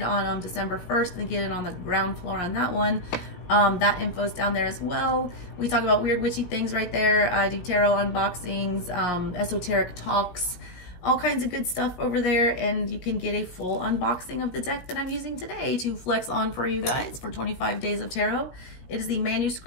on December 1st and get it on the ground floor on that one, that info is down there as well. We talk about weird witchy things right there. I do tarot unboxings, esoteric talks, all kinds of good stuff over there, and you can get a full unboxing of the deck that I'm using today to flex on for you guys for 25 days of tarot. It is the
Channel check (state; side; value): late; right; 17 ms